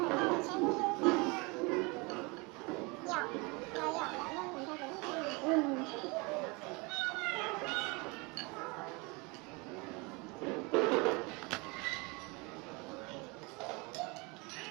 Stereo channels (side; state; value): left; quieter; 27.8 dB